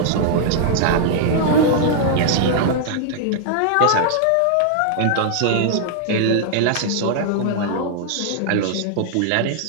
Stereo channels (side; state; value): both; different; correlation -0.01